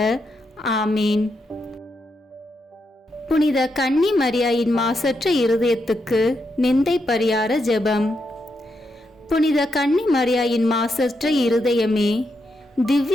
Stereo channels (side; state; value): both; normal; correlation 0.82